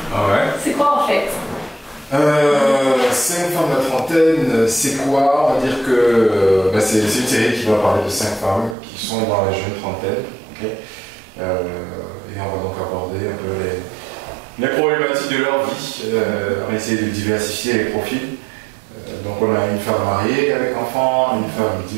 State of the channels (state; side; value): drops out; left; at 8.8 s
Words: Ah ouais. C'est quoi en fait? 5 femmes à la trentaine, c'est quoi? On va dire que c'est une série qui va parler de 5 femmes qui sont dans la jeune trentaine. Okay. Et on va donc aborder un peu les problématiques de leur vie. On va essayer de diversifier les profils. Donc on a une femme mariée avec enfant, une femme